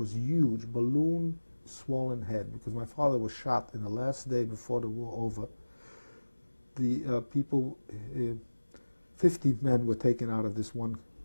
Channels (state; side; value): inverted; both; correlation -1.00